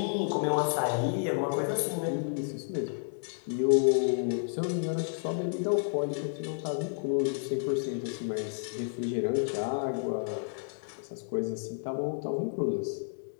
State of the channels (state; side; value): silent; right; digital silence